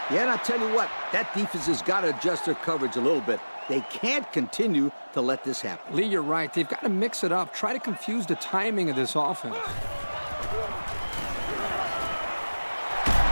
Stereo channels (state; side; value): inverted; both; correlation -1.00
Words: Yeah, and I'll tell you what, that defense has got to adjust their coverage a little bit. They can't continue to let this happen. Lee, you're right. They've got to mix it up. Try to confuse the timing of this offense.